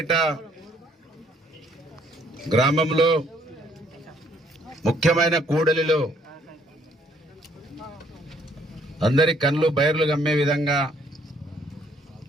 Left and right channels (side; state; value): both; normal; correlation 0.65